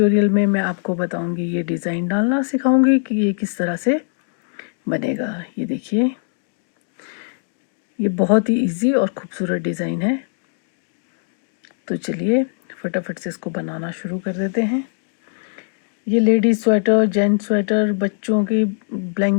में मैं आपको बताऊंगी, ये डिज़ाइन डालना सिखाऊंगी कि ये किस तरह से बनेगा। ये देखिए, ये बहुत ही इजी और खूबसूरत डिज़ाइन है। तो चलिए फटाफट से इसको बनाना शुरू कर देते हैं। ये लेडीज स्वेटर, जेंट्स स्वेटर, बच्चों की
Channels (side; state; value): right; silent; 65 dB below the other